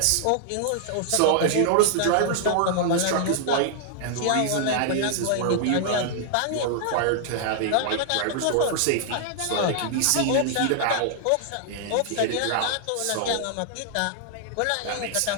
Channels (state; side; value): different; both; correlation -0.01